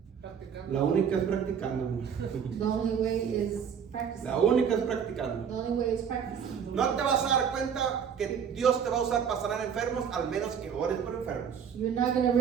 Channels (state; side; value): quieter; left; 7.5 dB